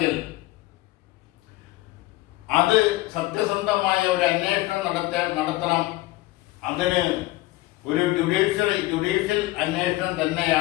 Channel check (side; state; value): right; quieter; 18.4 dB